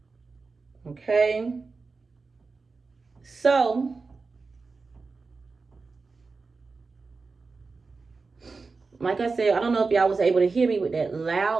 Okay. So, like I said, I don't know if y'all was able to hear me with that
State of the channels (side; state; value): left; quieter; 4.2 dB